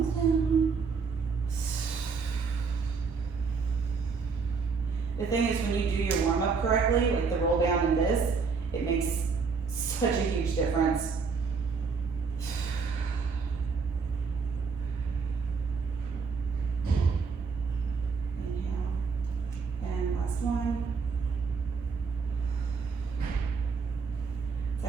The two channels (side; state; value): left; quieter; 5.1 dB